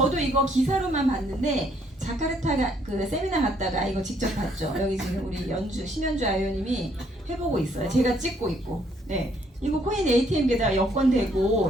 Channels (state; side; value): normal; both; correlation 0.67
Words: 이거 기사로만 봤는데 자카르타 그 세미나 갔다가 이거 직접 봤죠. 여기 지금 우리 심연주 아이오님이 해보고 있어요. 제가 찍고 있고. 네. 이거 코인 ATM기에다가 여권